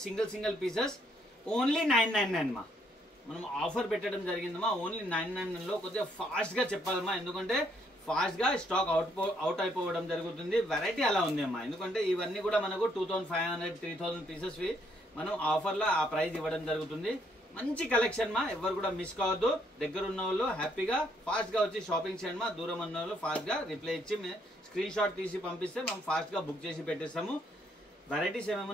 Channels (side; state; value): both; normal; correlation 0.71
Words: సింగిల్ పీసెస్ ఓన్లీ 999 మా. మనం ఆఫర్ పెట్టడం జరిగిందమ్మా. ఓన్లీ 999 లో కొద్దిగా ఫాస్ట్ గా చెప్పాలమ్మా, ఎందుకంటే ఫాస్ట్ గా స్టాక్ అవుట్ అయిపోవడం జరుగుతుంది. వెరైటీ అలా ఉంది అమ్మా. ఎందుకంటే ఇవన్నీ కూడా మనకు 2500 3000 పీసెస్ మనం ఆఫర్ లో ఆ ప్రైస్ ఇవ్వడం జరుగుతుంది. మంచి కలెక్షన్ మా. ఎవరు కూడా మిస్ కావద్దు. దగ్గర ఉన్న వాళ్ళు హ్యాపీగా ఫాస్ట్ గా వచ్చి షాపింగ్ చేయండి మా. దూరం ఉన్న వాళ్ళు ఫాస్ట్ గా రిప్లై ఇచ్చి స్క్రీన్ షాట్ తీసి పంపిస్తే మనం ఫాస్ట్ గా బుక్ చేసి పెట్టేస్తాము. వెరైటీస్